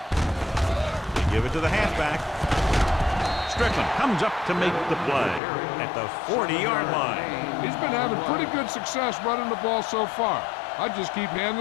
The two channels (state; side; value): drops out; right; at 5.4 s